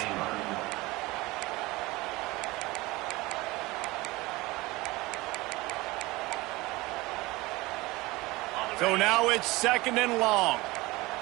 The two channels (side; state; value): left; quieter; 21.3 dB